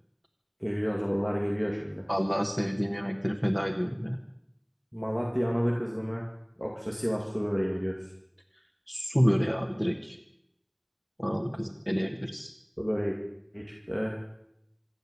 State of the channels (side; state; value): both; identical; correlation 1.00